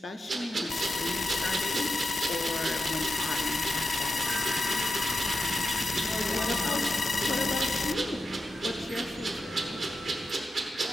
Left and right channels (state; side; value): normal; both; correlation 0.88